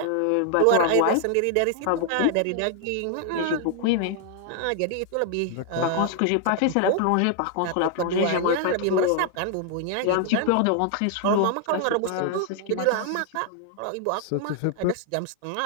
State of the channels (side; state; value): both; different; correlation 0.00